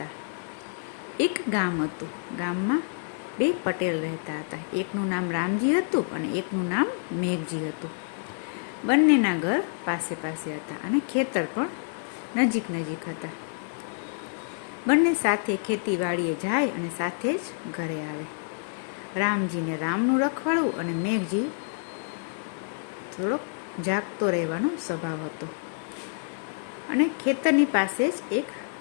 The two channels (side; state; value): right; silent; digital silence